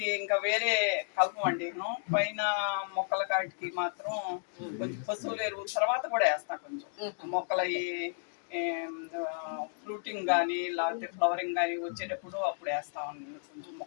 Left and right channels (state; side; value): silent; right; digital silence